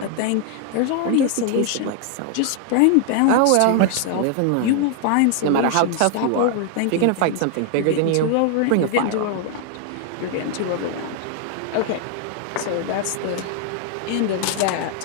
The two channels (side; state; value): both; different; correlation 0.00